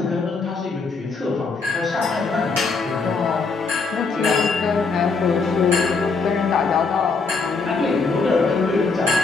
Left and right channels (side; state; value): right; quieter; 4.4 dB